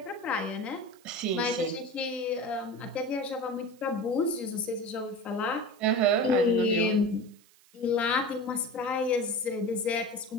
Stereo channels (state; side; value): noise; right; hiss, 28 dB below the sound